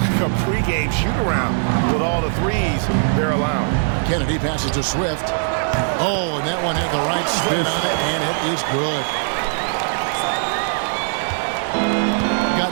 a pregame shoot-around with all the threes they're allowing. Kennedy passes to Swift. Oh, and that one had the right spin on it, and it is good.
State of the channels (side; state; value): left; silent; 66 dB below the other